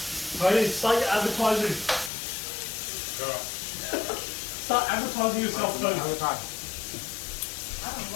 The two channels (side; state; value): right; drops out; at 2.1 s